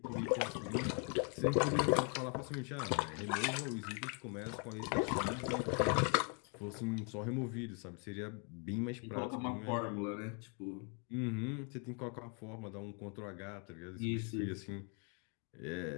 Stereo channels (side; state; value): right; quieter; 38.2 dB